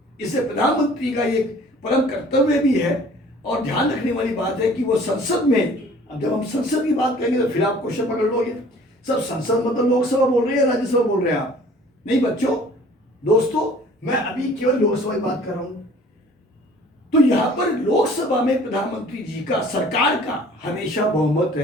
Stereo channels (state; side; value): normal; both; correlation 0.51